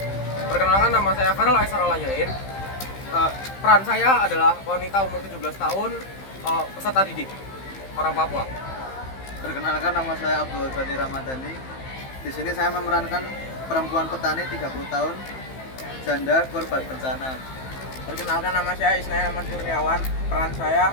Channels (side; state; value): right; late; 15 ms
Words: perkenalkan nama saya Farel Aisar Alayain. Peran saya adalah wanita umur 17 tahun, peserta didik, orang Papua. Perkenalkan, nama saya Abdul Ghani Ramadhani. Di sini saya memerankan perempuan petani 30 tahun, janda korban bencana. Perkenalkan, nama saya Isnaya Ahmad Kurniawan. Peran saya